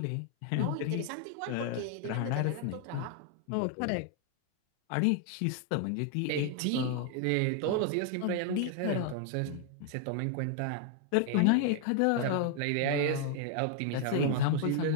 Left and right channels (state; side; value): different; both; correlation 0.00